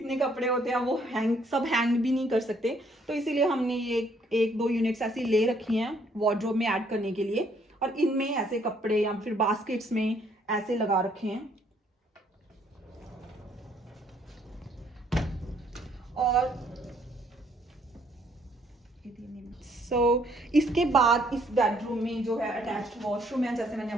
कपड़े होते हैं वो सब हैंग भी नहीं कर सकते, तो इसीलिए हमने ये 1-2 यूनिट्स ऐसी ले रखी हैं वार्डरोब में ऐड करने के लिए। और इनमें ऐसे कपड़े या फिर बास्केट्स में ऐसे लगा रखे हैं। और इसके बाद इस बेडरूम में जो है अटैच्ड वॉशरूम है, जैसे मैंने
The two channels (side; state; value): both; normal; correlation 0.66